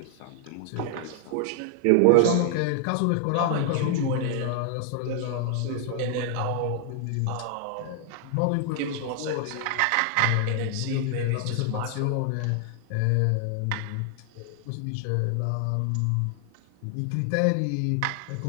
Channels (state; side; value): different; both; correlation 0.00